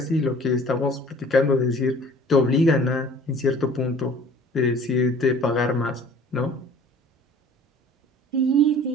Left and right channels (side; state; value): both; normal; correlation 0.49